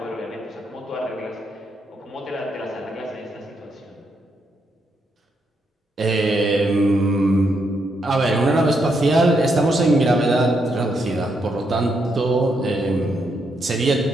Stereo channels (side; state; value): both; normal; correlation 0.79